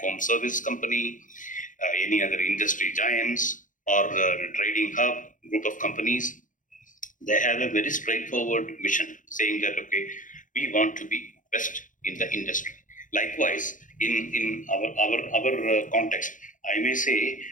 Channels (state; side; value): late; right; 0.38 ms